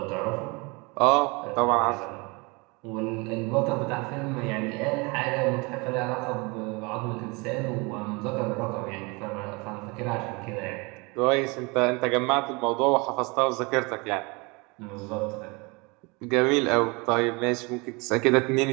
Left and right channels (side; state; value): left; quieter; 27.7 dB